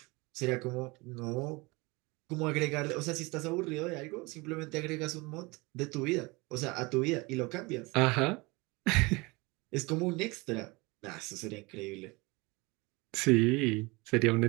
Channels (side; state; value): left; quieter; 25.2 dB